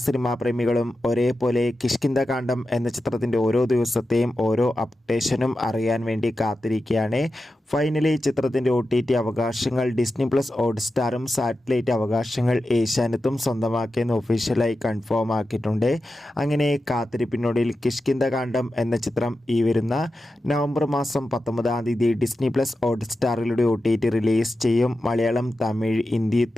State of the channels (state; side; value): normal; both; correlation 0.91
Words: സിനിമാ പ്രേമികളും ഒരേപോലെ കിഷ്കിന്ധകാണ്ഡം എന്ന ചിത്രത്തിൻ്റെ ഓരോ ദിവസത്തെയും ഓരോ അപ്ഡേഷനും അറിയാൻ വേണ്ടി കാത്തിരിക്കുകയാണ്. ഫൈനലി ചിത്രത്തിൻ്റെ OTT അവകാശങ്ങൾ ഡിസ്നി പ്ലസ് ഹോട്ട്സ്റ്റാറും സാറ്റലൈറ്റ് അവകാശങ്ങൾ ഏഷ്യാനെറ്റും സ്വന്തമാക്കിയെന്ന് ഒഫീഷ്യലായി കൺഫേം ആക്കിയിട്ടുണ്ട്. അങ്ങനെ കാത്തിരിപ്പിനൊടുവിൽ കിഷ്കിന്ധകാണ്ഡം എന്ന ചിത്രം ഈ വരുന്ന നവംബർ മാസം 19 ഡിസ്നി പ്ലസ് ഹോട്ട്സ്റ്റാറിലൂടെ OTT റിലീസ് ചെയ്യും. മലയാളം, തമിഴ്, ഹിന്ദി,